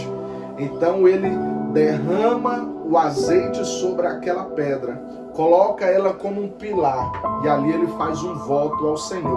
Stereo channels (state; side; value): identical; both; correlation 1.00